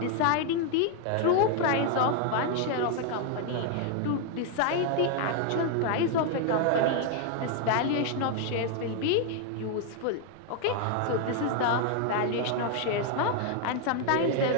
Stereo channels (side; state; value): both; different; correlation 0.00